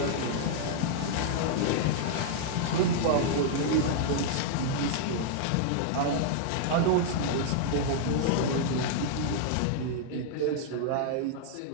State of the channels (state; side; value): different; both; correlation -0.01